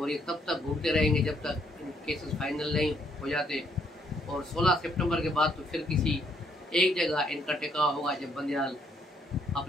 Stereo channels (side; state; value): both; normal; correlation 0.71